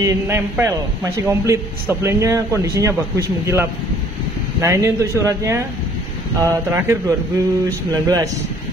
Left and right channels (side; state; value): both; normal; correlation 0.57